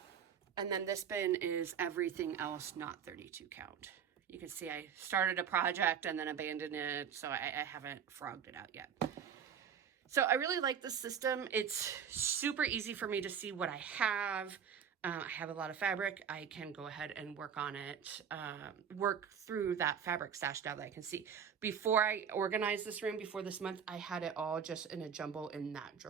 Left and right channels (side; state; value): left; quieter; 7.7 dB